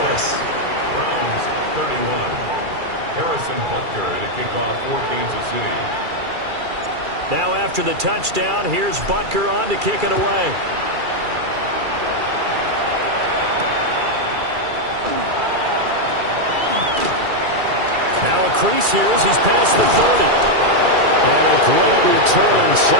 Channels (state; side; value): late; left; 2.3 ms